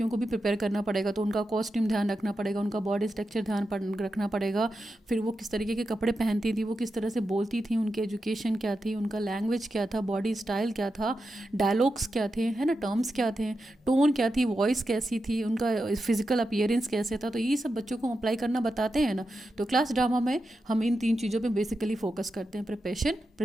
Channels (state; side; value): normal; both; correlation 0.89